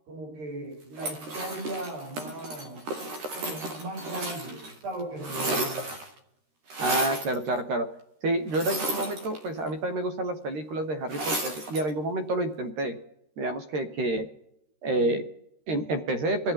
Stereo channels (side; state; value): left; late; 13 ms